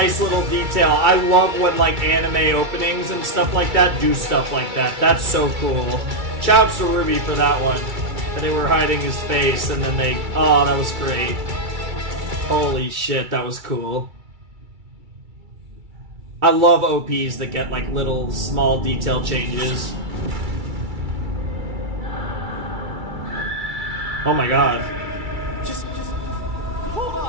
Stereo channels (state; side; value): late; left; 2.3 ms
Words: little detail. I love when, like, anime openings and stuff like that do stuff like that. That's so cool. Shouts to RWBY for that one. And they were hiding his face, and then they... Oh, that was great. Holy shit, that was cool. I love OPs that get, like, little, small detail changes. Oh my god. Just hold